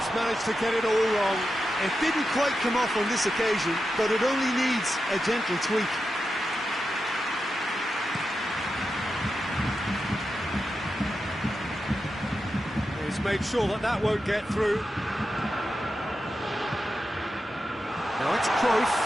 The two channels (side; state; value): both; normal; correlation 0.89